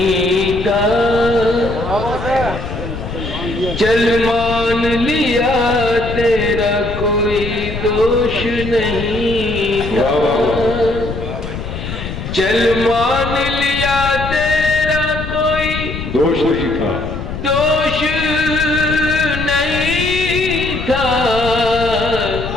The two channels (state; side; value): noise; left; rumble, 7 dB below the sound